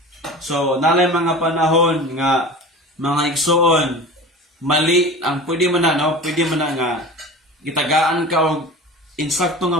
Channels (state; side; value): normal; both; correlation 0.35